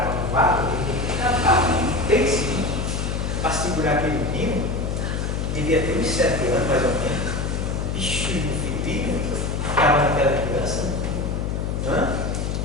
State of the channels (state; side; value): noise; left; hum, 1 dB below the sound